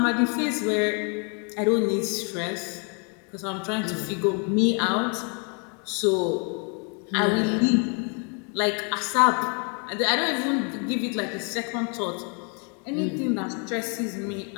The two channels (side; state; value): right; quieter; 37.0 dB